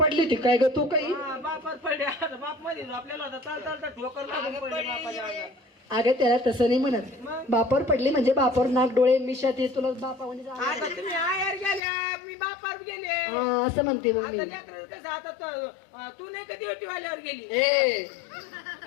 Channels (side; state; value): right; drops out; at 11.8 s